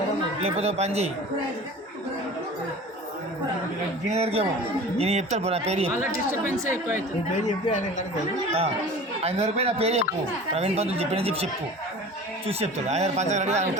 లేకపోతే పని చేయి దీని దగ్గరికి ఏమో నేను చెప్తాను పో నా పేరు నీ పేరు చెప్పి ఆయన ఆయన దగ్గర పోయి నా పేరు చెప్పు ప్రవీణ్ పంతులు చెప్పి చెప్పు చూసి చెప్తాడు ఆయన పంచగడి ఆయన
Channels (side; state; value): both; normal; correlation 0.39